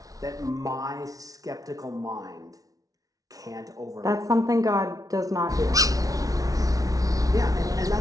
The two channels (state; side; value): late; left; 0.18 ms